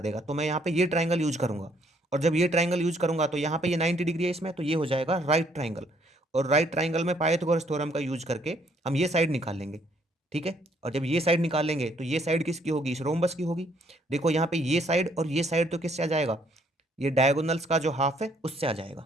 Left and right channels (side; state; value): both; normal; correlation 0.67